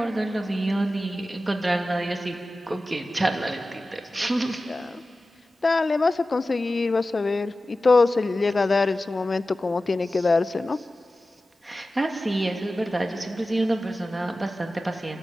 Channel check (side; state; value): both; normal; correlation 0.95